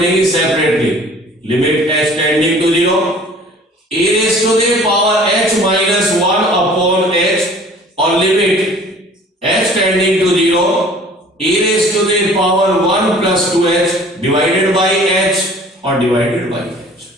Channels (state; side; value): normal; both; correlation 0.49